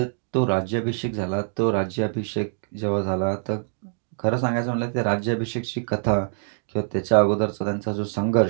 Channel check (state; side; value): silent; left; digital silence